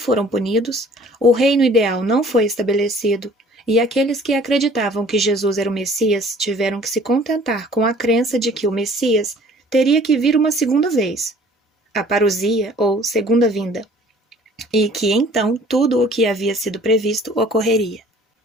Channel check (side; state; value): both; normal; correlation 0.52